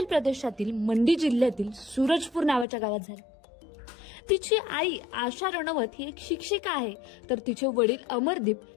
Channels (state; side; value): drops out; right; at 2.7 s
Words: प्रदेशातील मंडी जिल्ह्यातील सूरजपूर नावाच्या गावात झाला। तिची आई आशा रनौत ही एक शिक्षिका आहे, तर तिचे वडील अमरदीप